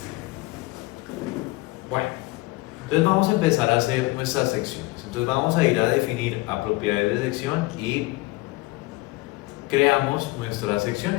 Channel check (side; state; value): right; quieter; 21.3 dB